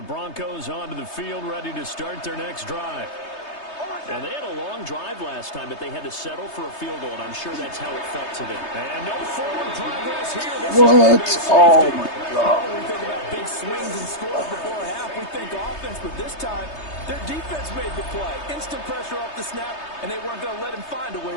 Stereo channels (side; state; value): right; late; 3.3 ms